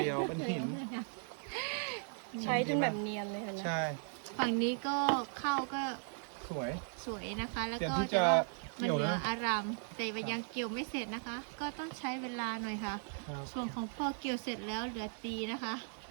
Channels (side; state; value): left; silent; 53 dB below the other